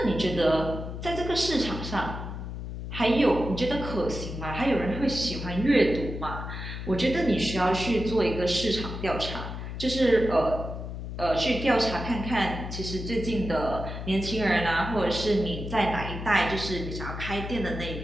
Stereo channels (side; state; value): left; noise; hum, 7 dB below the sound